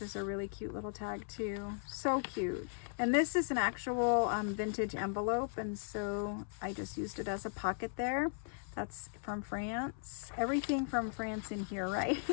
a really cute little tag too. So cute. And this is an actual vintage envelope, and so I just used it as a pocket there. That's from France. Everything from France in here, right?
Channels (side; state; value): right; silent; 53 dB below the other